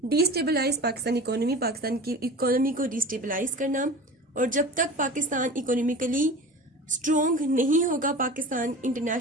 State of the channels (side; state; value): both; normal; correlation 0.36